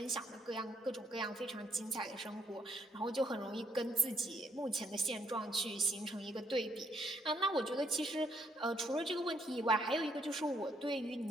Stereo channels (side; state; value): both; normal; correlation 0.71